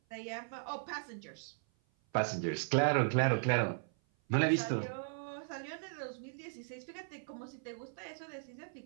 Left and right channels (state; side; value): silent; left; 53 dB below the other